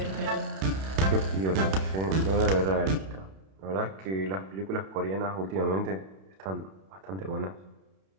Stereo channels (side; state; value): left; late; 31 ms